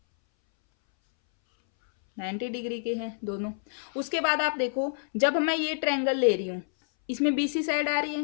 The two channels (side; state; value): right; silent; 59 dB below the other